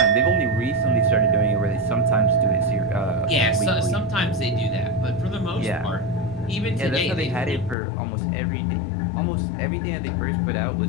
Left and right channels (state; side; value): drops out; right; at 7.8 s